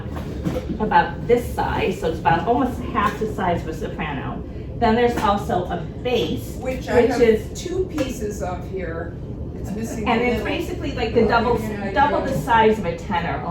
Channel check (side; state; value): both; identical; correlation 1.00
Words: this size, so it's about almost half the size of a soprano. Then there's also a bass, Which is 2 pieces of here. It's missing and the it's middle. basically like the double the size of a tenor